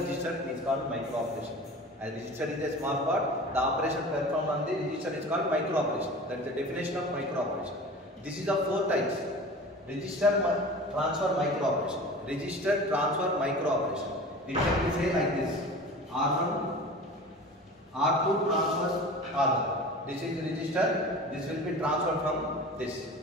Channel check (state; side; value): normal; both; correlation 0.37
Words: is called micro operation. As register is a small part, the operation performed on the register is called micro operation. That is the definition of micro operation. This is of 4 types. Register transfer micro operation. Register transfer micro operation. It can be say like this: R1, R2 transfers R1. This is register. This will be transferred from this.